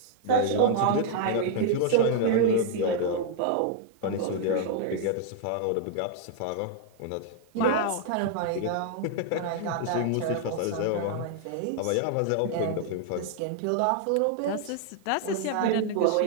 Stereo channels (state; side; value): different; both; correlation 0.00